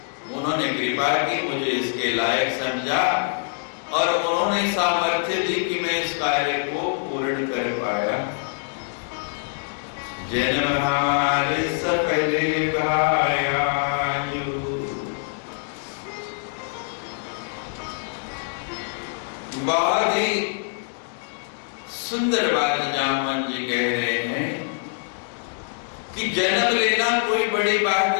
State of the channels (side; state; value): right; silent; digital silence